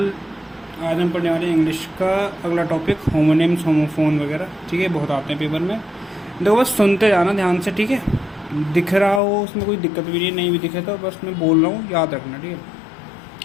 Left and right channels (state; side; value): drops out; right; at 9.2 s